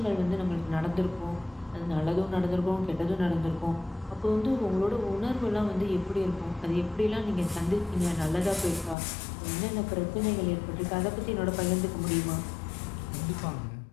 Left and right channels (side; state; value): right; drops out; at 9.0 s